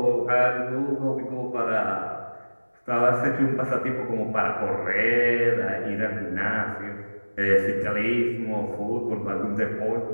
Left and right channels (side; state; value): both; inverted; correlation -1.00